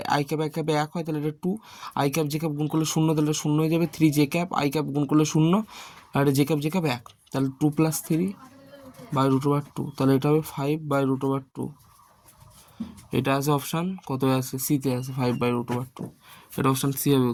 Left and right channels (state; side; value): identical; both; correlation 1.00